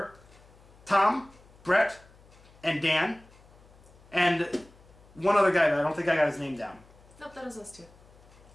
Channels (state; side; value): noise; left; hum, 25 dB below the sound